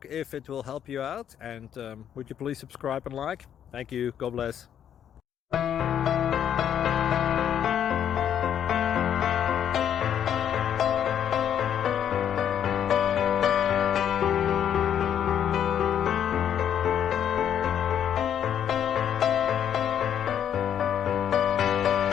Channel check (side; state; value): right; quieter; 9.4 dB